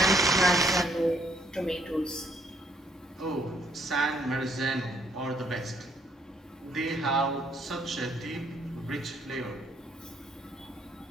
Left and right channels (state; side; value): normal; both; correlation 0.68